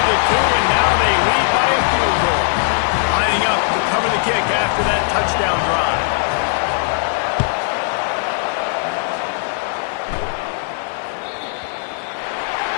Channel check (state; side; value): silent; right; 63 dB below the other